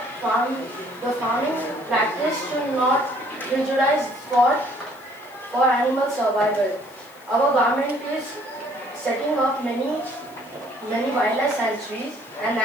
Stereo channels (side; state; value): left; noise; hiss, 26 dB below the sound